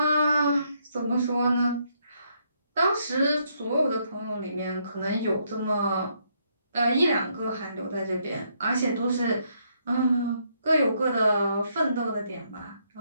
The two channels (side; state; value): both; inverted; correlation -0.74